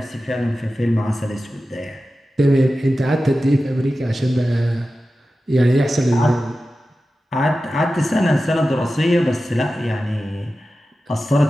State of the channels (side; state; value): both; normal; correlation 0.93